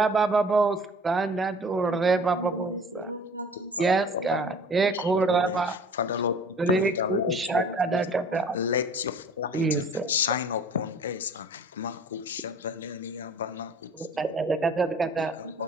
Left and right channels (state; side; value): normal; both; correlation 0.47